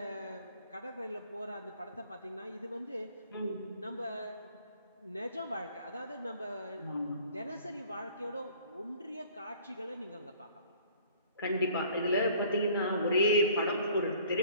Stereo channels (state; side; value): inverted; both; correlation -0.53